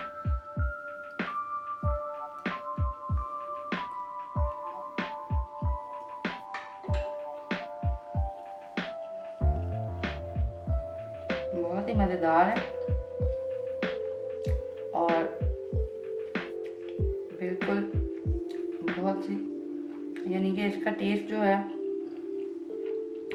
बहुत ही मज़ेदार है और बिल्कुल बहुत सी, यानी कि इसका टेस्ट जो है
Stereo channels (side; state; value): both; identical; correlation 1.00